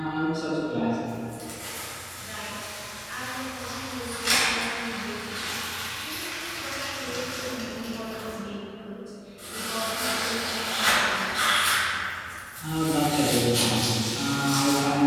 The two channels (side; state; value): both; identical; correlation 1.00